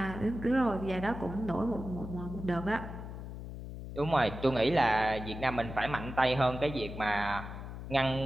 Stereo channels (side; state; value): left; noise; hum, 9 dB below the sound